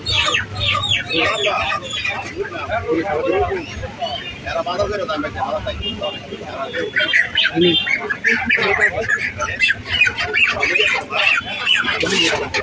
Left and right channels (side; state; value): both; identical; correlation 1.00